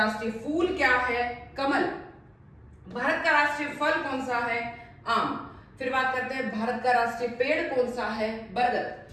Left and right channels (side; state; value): both; identical; correlation 1.00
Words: फूल क्या है? कमल। भारत का राष्ट्रीय फल कौन सा है? आम। फिर बात करते हैं भारत का राष्ट्रीय पेड़ कौन सा है?